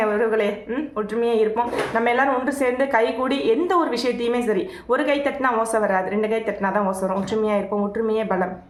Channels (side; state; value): both; identical; correlation 1.00